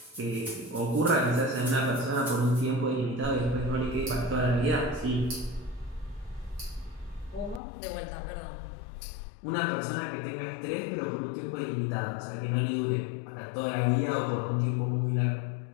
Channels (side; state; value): right; drops out; at 7.6 s